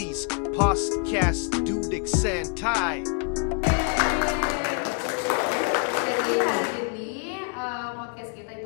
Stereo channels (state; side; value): quieter; right; 39.3 dB